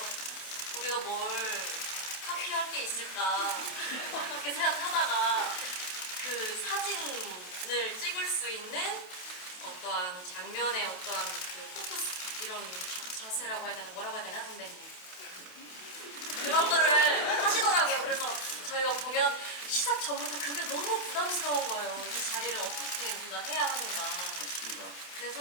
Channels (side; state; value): right; late; 28 ms